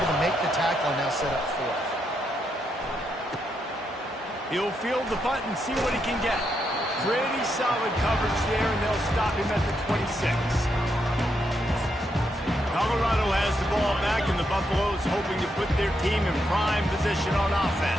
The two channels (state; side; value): normal; both; correlation 0.80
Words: to make the tackle and now set up 4th. He'll field the punt and see what he can get. Pretty solid coverage there, and they'll stop him at the 26. Colorado has the ball back, and the Buffaloes hoping to put their team in prime position on